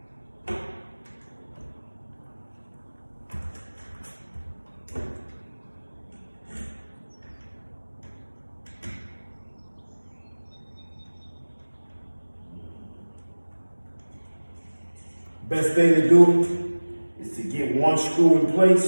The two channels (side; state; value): both; inverted; correlation -1.00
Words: Best thing to do is to get one screw in